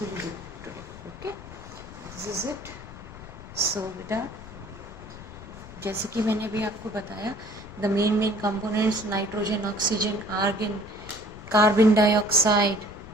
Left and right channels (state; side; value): noise; left; rumble, 15 dB below the sound